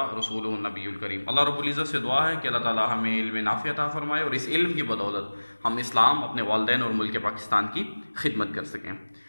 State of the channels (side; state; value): both; inverted; correlation -1.00